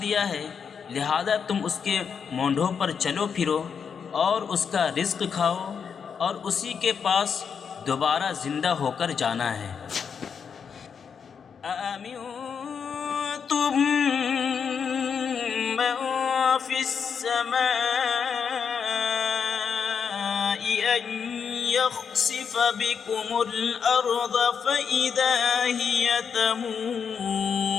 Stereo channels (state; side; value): quieter; right; 6.6 dB